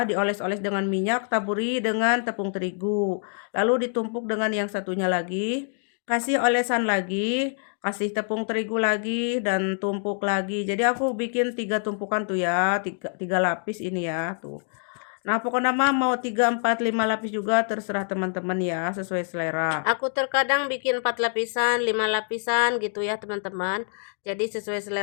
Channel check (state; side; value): silent; right; 57 dB below the other